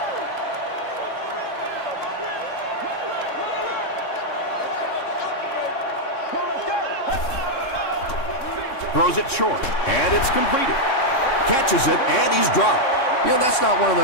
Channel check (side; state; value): right; late; 3.7 ms